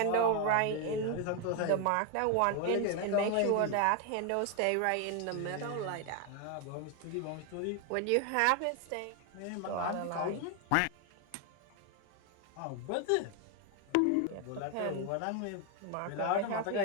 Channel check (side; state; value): both; different; correlation 0.01